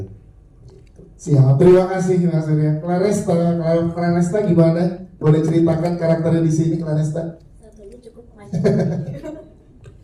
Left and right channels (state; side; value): identical; both; correlation 1.00